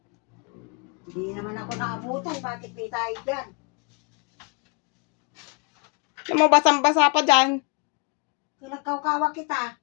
Hindi naman ako nakabutan. Bakit may tayo dyan? Alam mo, basang-basa pa dyan. Kung nagkaukawa kita.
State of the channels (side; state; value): right; quieter; 33.0 dB